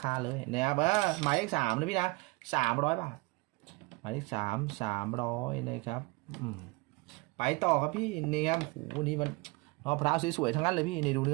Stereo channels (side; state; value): left; quieter; 25.6 dB